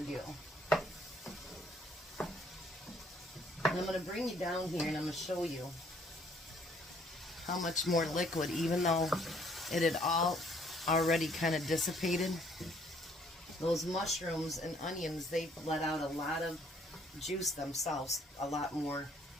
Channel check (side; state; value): both; normal; correlation 0.63